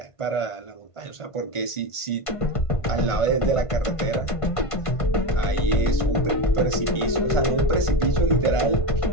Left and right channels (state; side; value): late; right; 1.5 ms